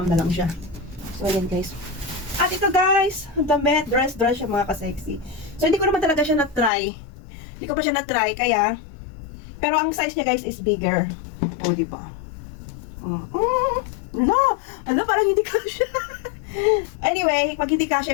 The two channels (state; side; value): drops out; right; at 6.7 s